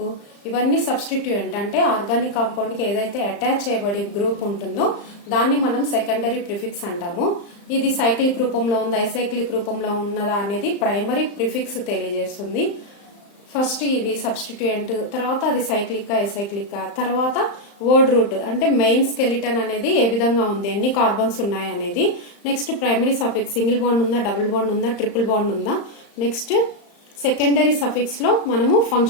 ఇవన్నీ సబ్స్టిట్యూయెంట్ అంటే ఆర్గానిక్ కాంపౌండ్ కి ఏదైతే అటాచ్ చేయబడి గ్రూప్ ఉంటుందో దాన్ని మనం సెకండరీ ప్రిఫిక్స్ అంటాము. ఇది సైక్లిక్ రూపంలో ఉందా ఎసైక్లిక్ రూపంలో ఉన్నదా అనేది ప్రైమరీ ప్రిఫిక్స్ తెలియజేస్తుంది. ఫస్ట్ ఇది సబ్స్టిట్యూయెంట్, తర్వాత అది సైక్లిక్ ఎసైక్లిక్, తర్వాత వర్డ్ రూట్ అంటే మెయిన్ స్కెలిటన్ అనేది ఏ విధంగా ఉంది, ఎన్ని కార్బన్స్ ఉన్నాయి అనేది. Next primary suffix, single bond ఉందా, డబుల్ బాండ్ ఉందా, ట్రిపుల్ బాండ్ ఉందా. నెక్స్ట్ సెకండరీ సఫిక్స్ లో మనము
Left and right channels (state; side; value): late; right; 35 ms